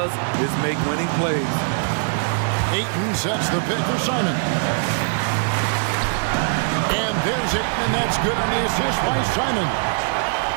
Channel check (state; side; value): silent; left; 55 dB below the other